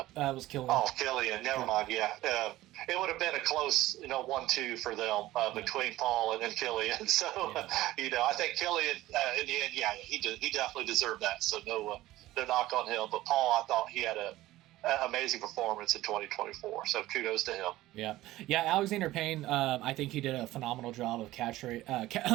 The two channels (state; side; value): quieter; left; 16.4 dB